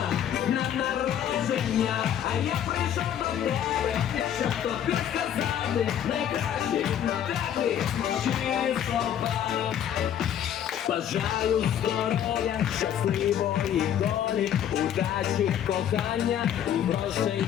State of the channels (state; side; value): quieter; right; 9.9 dB